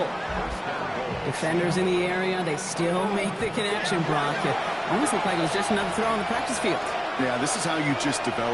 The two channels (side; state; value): both; identical; correlation 1.00